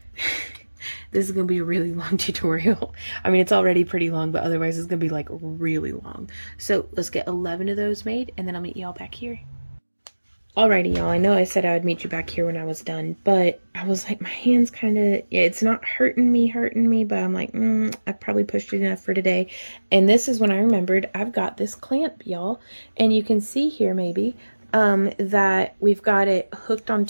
this is going to be a really long tutorial. I mean, it's already pretty long, but otherwise it's going to be like really long. So let's get 11 of those made, and then I'll meet y'all back here. Alrighty, y'all. I know I said I would meet you back here when I was done, but I was like, my hand's kind of, yeah, it's not hurting me, but I'm like, I probably pushed it enough for today. And this is when I remembered I've got this clamp, y'all. And you can see here maybe that we've got it hooked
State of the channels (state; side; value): inverted; both; correlation -1.00